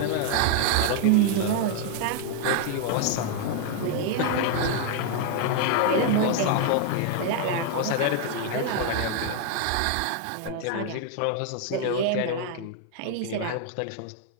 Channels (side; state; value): both; different; correlation 0.00